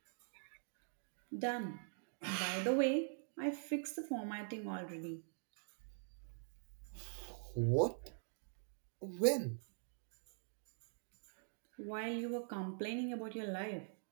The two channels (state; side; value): silent; left; digital silence